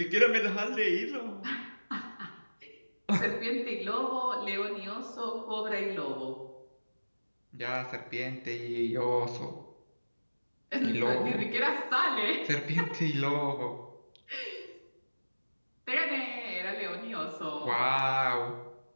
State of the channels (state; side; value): inverted; both; correlation -1.00